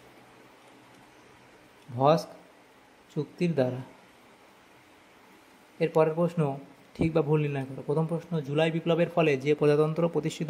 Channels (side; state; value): both; identical; correlation 1.00